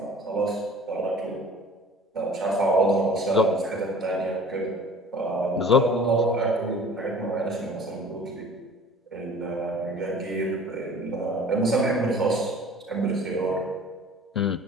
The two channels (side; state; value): both; normal; correlation 0.47